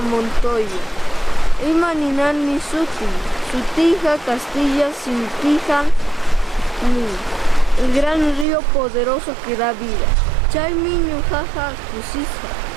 Montoya. Imaninan mi Sutija Castilla Sintija el gran río poderoso que da vida. Chay miño jaja kusisa.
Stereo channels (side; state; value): left; drops out; at 8.5 s